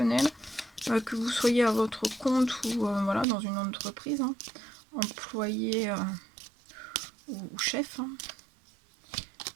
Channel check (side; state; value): left; drops out; at 3.2 s